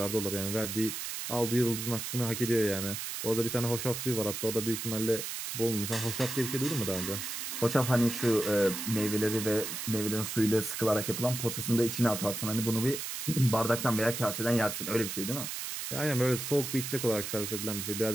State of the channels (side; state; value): right; noise; hiss, 5 dB below the sound